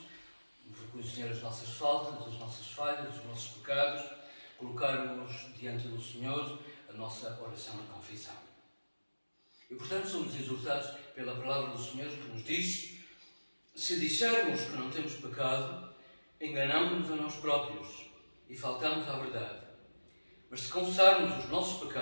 reconhecer as nossas faltas, as nossas falhas, os nossos pecados, colocar-nos diante do Senhor a nossa oração de confissão. E, portanto, somos exortados pela palavra do Senhor que nos diz: se dissermos que não temos pecado, enganamos-nos a nós próprios e faltamos à verdade. Mas se confessarmos os nossos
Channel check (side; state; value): both; inverted; correlation -1.00